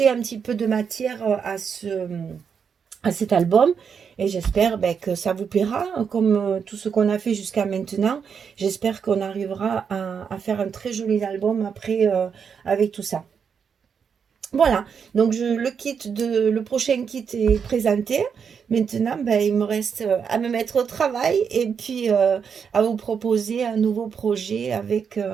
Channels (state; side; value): quieter; left; 6.7 dB